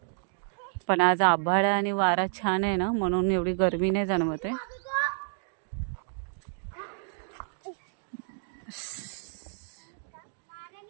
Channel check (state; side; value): silent; left; digital silence